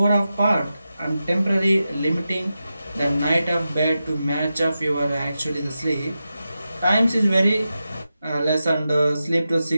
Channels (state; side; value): inverted; both; correlation -0.91